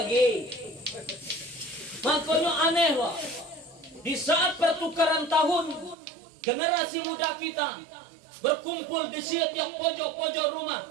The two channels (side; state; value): left; drops out; at 6.0 s